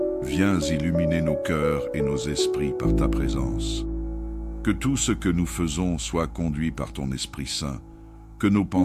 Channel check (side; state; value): both; identical; correlation 1.00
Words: Viens illuminer nos cœurs et nos esprits par ta présence. Que tout ce que nous faisons soit conduit par ton Esprit Saint, que nos